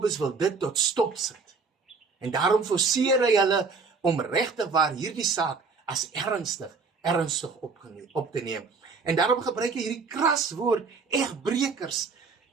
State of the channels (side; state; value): left; quieter; 4.7 dB